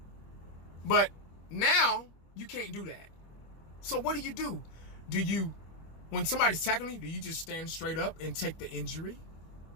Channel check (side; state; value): right; late; 25 ms